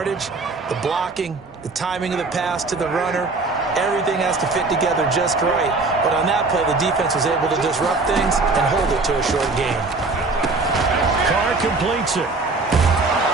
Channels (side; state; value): left; quieter; 3.6 dB